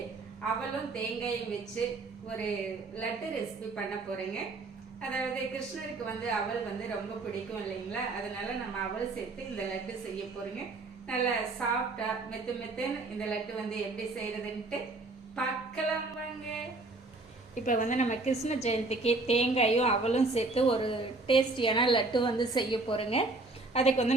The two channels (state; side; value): quieter; left; 3.3 dB